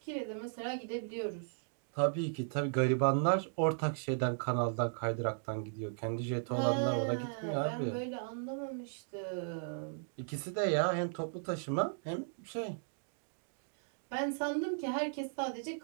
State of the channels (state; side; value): silent; left; digital silence